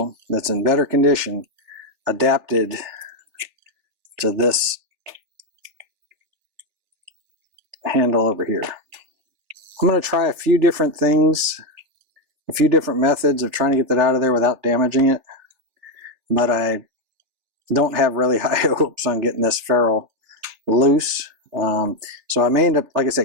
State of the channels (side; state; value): left; late; 3.4 ms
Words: that's in better condition adapted to this handle over here. I'm going to try a few different things, a few different methods of trying to get that out of there without damaging it. but I don't have really high hopes on getting this ferrule loose. So I may end up, like I